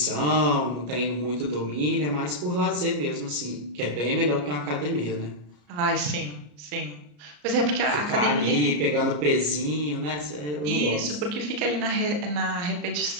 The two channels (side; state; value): left; late; 34 ms